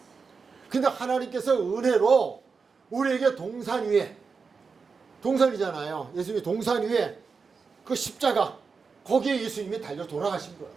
근데 하나님께서 은혜로 우리에게 동산 위에, 동산이잖아요. 예수님이 동산 위에 그 십자가, 거기에 예수님이 달려 돌아가신 거예요.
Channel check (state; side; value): quieter; left; 5.1 dB